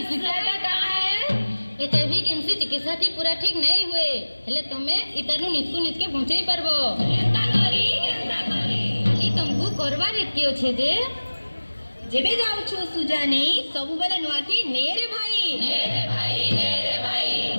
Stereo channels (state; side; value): inverted; both; correlation -1.00